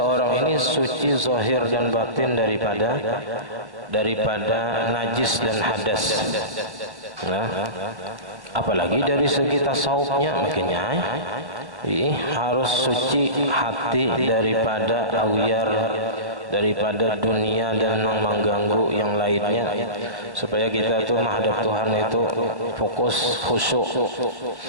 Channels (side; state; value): left; late; 1.1 ms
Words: ini suci zahir dan batin daripada najis dan hadas. Nah, apalagi dari segi tasawufnya, makanya harus suci hati daripada awyar, daripada dunia dan mengganggu yang lainnya, supaya kita tuh menghadap Tuhan itu fokus, khusyuk.